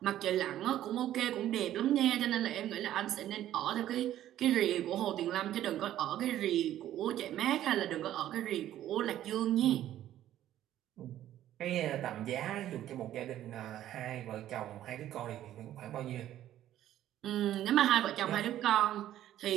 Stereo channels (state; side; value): quieter; left; 12.5 dB